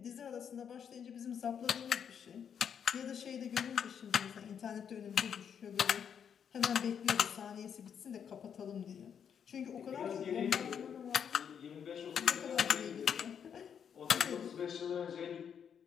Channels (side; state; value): right; quieter; 7.8 dB